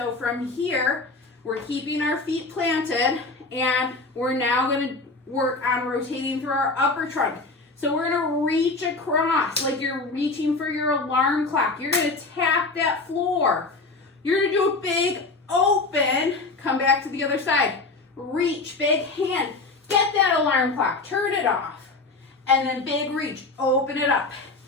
from here, we're keeping our feet planted, and we're now going to work on rotating through our upper trunk. So we're going to reach across like you're reaching for your alarm clock. You're going to tap that floor. You're going to do a big open, come back to the other side. Reach, big hand, get that alarm clock, turn it off. And then big reach, open it up.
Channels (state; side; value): quieter; right; 3.5 dB